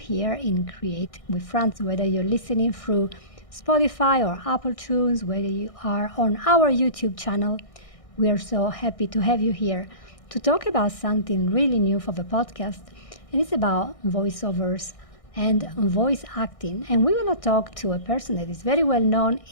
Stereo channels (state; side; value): late; right; 1.6 ms